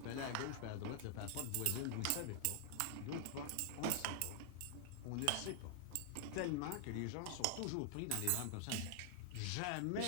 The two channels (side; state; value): both; different; correlation 0.00